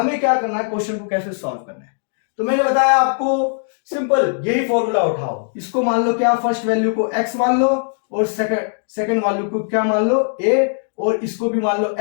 क्या करना है, क्वेश्चन को कैसे सॉल्व करना है। तो मैंने बताया आपको सिंपल, यही फॉर्मूला उठाओ, इसको मान लो क्या, फर्स्ट वैल्यू को x मान लो और सेकंड वैल्यू को क्या मान लो a, और इसको भी मान लो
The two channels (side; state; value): right; silent; 66 dB below the other